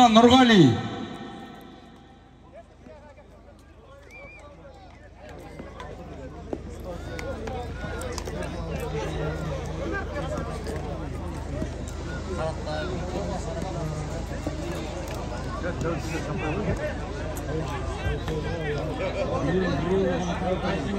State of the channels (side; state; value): both; identical; correlation 1.00